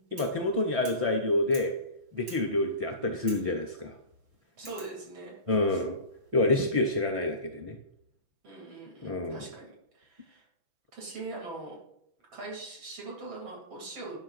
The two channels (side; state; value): left; late; 6.0 ms